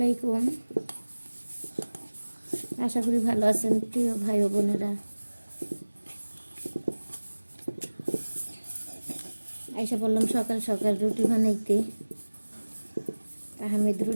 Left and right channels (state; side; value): inverted; both; correlation -1.00